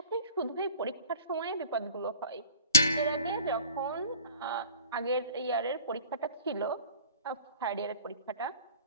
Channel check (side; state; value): both; inverted; correlation -0.45